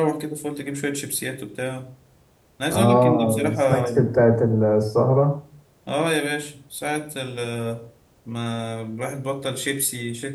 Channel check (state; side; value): identical; both; correlation 1.00